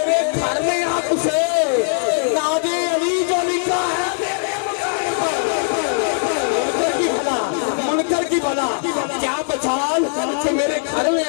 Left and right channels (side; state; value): right; silent; 64 dB below the other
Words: گھر میں آپ سے ناد علی جو لکھا ہے میرے مکان پر، منکر کی بھلا کیا بچان کہ میرے گھر میں